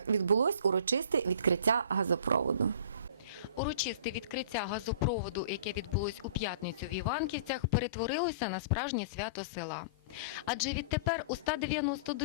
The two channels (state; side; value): inverted; both; correlation -0.43